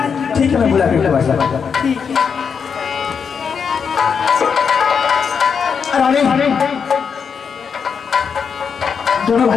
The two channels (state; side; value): quieter; right; 6.4 dB